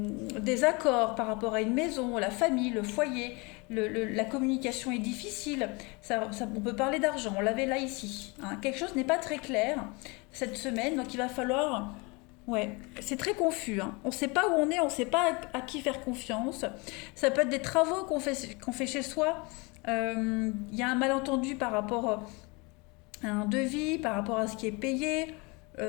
accords par rapport à une maison, la famille, le foyer, la communication est difficile, on peut parler d'argent, on l'avait là ici. Quelque chose n'est pas très clair cette semaine, donc il va falloir... Ouais, c'est très confus. On ne sait pas où on est, on ne sait pas à qui faire confiance. Ça peut être des travaux qu'on fait chez soi. Il y a un malentendu par rapport un devis, par rapport à ce qui est payé.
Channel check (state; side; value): quieter; right; 28.0 dB